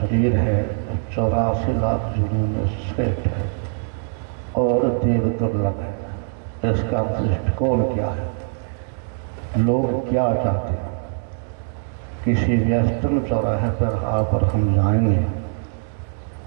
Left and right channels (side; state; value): left; silent; 58 dB below the other